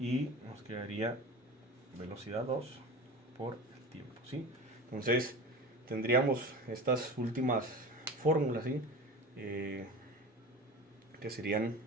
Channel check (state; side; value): normal; both; correlation 0.32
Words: nos quedaría velocidad 2 por el tiempo, ¿sí? Entonces tendríamos estas últimas fórmulas, ¿sí? Que serían,